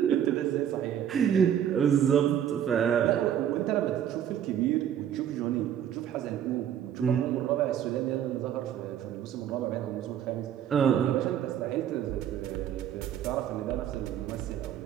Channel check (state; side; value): quieter; left; 9.9 dB